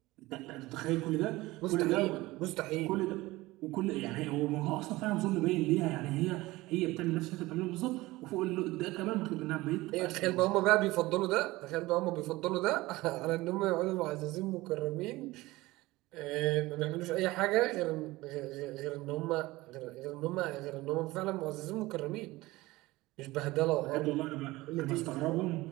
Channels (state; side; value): quieter; left; 19.6 dB